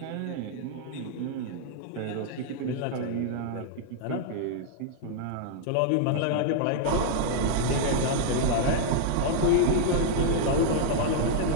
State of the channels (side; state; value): both; different; correlation -0.01